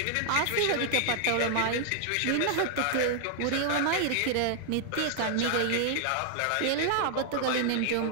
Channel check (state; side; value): different; both; correlation -0.01